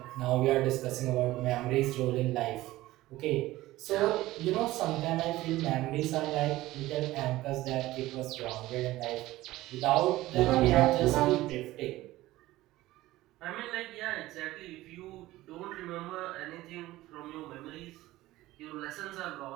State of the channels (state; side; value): quieter; left; 17.0 dB